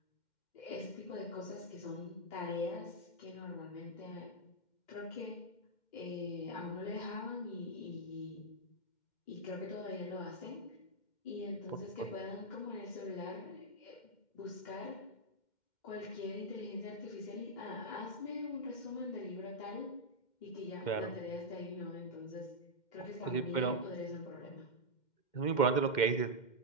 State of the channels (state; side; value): late; right; 2.1 ms